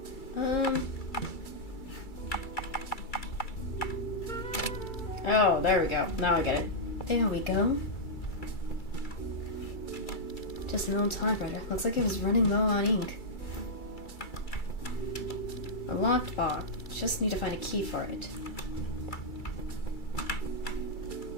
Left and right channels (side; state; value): right; late; 2.3 ms